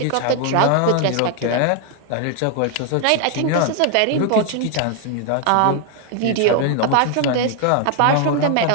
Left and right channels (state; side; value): different; both; correlation 0.00